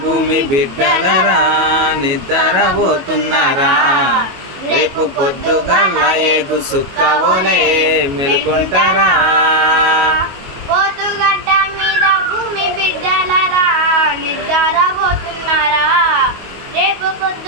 భూమి బిడ్డలరా నిద్రపోతున్నారా రేపు పొద్దుగాల ఏగు చుక్కవోలే మేల్కుంటారా పొద్దుగడ్డ మీద భూమి బిడ్డలరా నిద్రపోతున్నారా రేపు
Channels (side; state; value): left; late; 22 ms